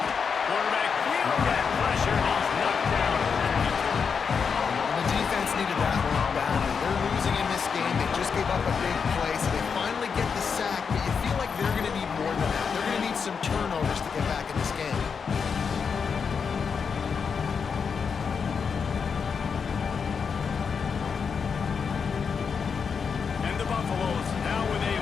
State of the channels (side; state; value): right; quieter; 6.1 dB